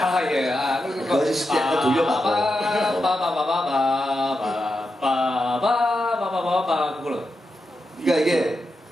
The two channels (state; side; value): normal; both; correlation 0.88